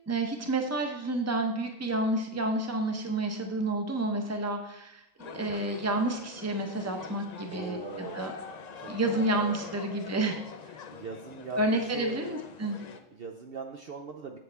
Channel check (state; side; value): normal; both; correlation 0.06